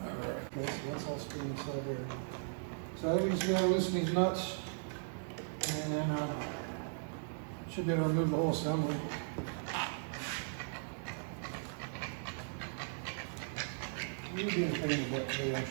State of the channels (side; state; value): left; silent; digital silence